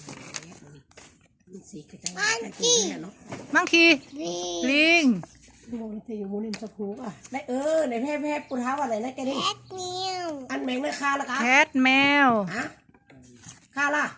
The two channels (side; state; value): both; identical; correlation 1.00